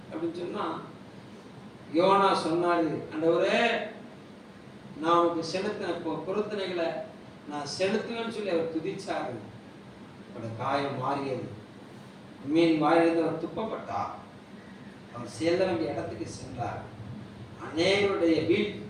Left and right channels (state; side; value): identical; both; correlation 1.00